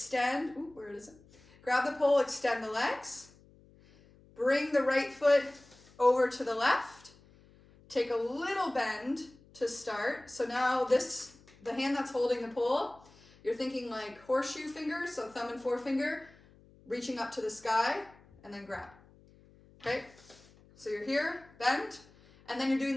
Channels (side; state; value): left; noise; hum, 26 dB below the sound